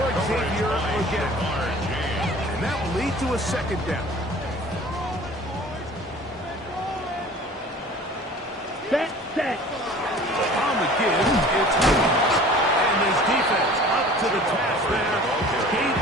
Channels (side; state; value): both; normal; correlation 0.45